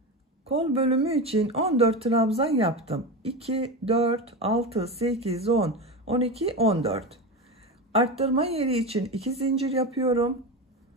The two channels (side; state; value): both; normal; correlation 0.21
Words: Kol bölümü için 14 trabzan yaptım. 2, 4, 6, 8, 10, 12, 14. Arttırma yeri için 2 zincir yapıyorum.